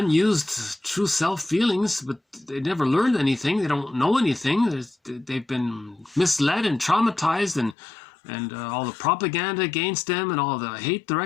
true self feelings, but they never learned anything. They don't know anything. They've been misled and traumatized, and all the propaganda against them and all the hate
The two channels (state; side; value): drops out; right; at 7.8 s